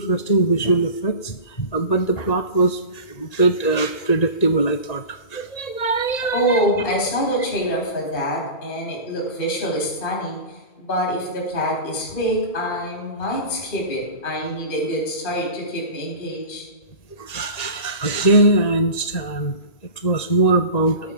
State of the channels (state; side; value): late; right; 1.9 ms